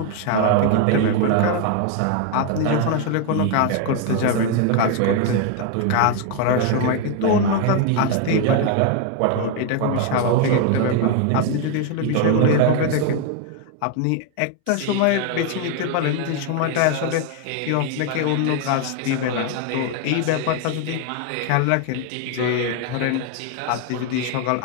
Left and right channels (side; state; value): both; different; correlation 0.01